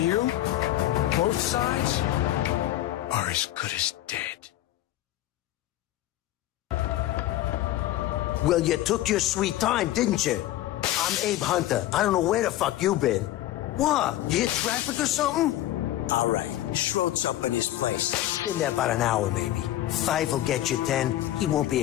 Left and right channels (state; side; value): quieter; right; 14.1 dB